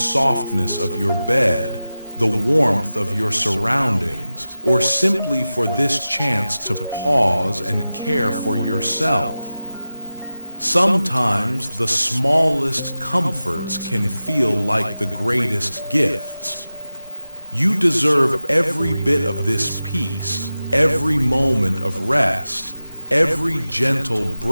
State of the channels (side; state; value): both; inverted; correlation -0.95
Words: of your bed, the warmth of your surroundings, or simply for this chance to pause and care for yourself. Sometimes the smallest comforts can feel like the greatest gifts. You deserve every bit of this peace, every moment of rest, every gentle